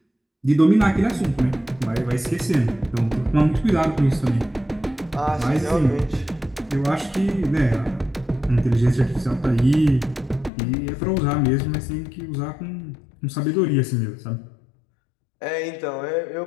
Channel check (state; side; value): drops out; right; at 10.5 s